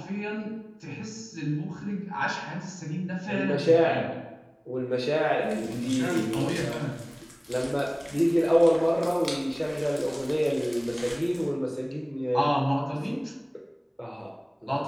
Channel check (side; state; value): both; identical; correlation 1.00